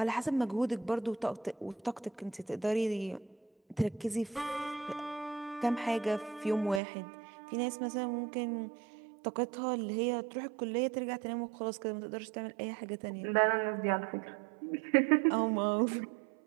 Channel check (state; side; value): drops out; left; at 6.8 s